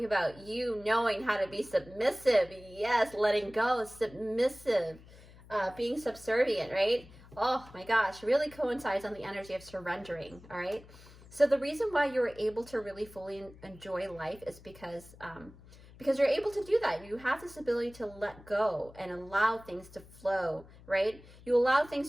about you knowing how to be submissive. Yes, letting go, submissive, being subservient, right? Oh my gosh, really coincides on the energy of surrendering, all right? So the reason why you're able to really fully enjoy life is because you're able to do that. You have this ability to let go and allow things to flow, right? You allow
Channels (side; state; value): left; noise; hum, 21 dB below the sound